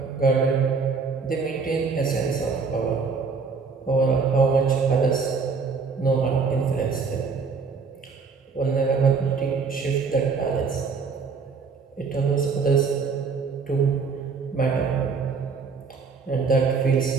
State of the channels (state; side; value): quieter; left; 5.0 dB